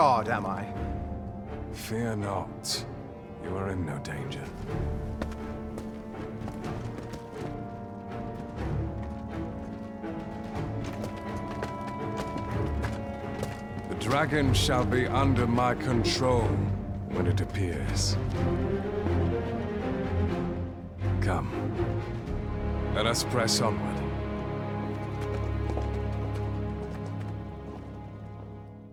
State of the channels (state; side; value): identical; both; correlation 1.00